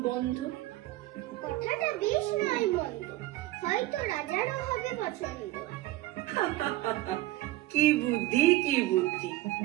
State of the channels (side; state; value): left; quieter; 16.8 dB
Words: বন্ধ। কথাটা বেশ নয় মন্দ, হয়তো রাজারও হবে পছন্দ। কি বুদ্ধি, কি বুদ্ধি!